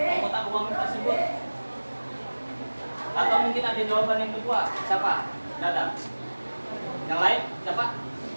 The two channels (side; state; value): both; inverted; correlation -1.00